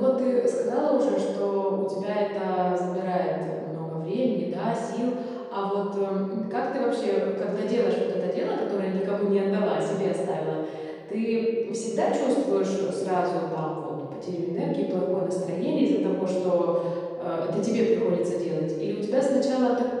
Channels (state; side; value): identical; both; correlation 1.00